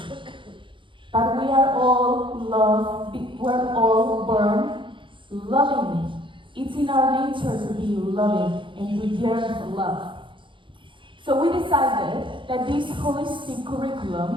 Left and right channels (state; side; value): late; left; 0.24 ms